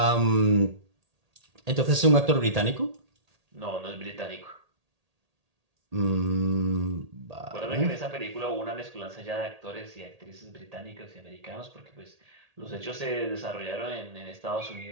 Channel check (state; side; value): late; left; 1.8 ms